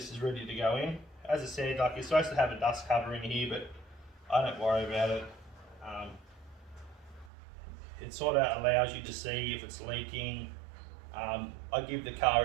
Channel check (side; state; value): left; drops out; at 7.3 s